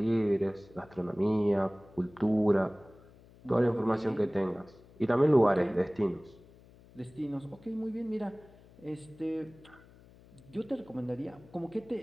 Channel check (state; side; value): noise; left; hum, 24 dB below the sound